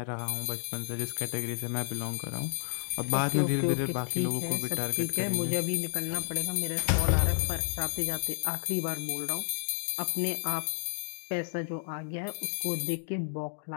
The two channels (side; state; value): right; silent; digital silence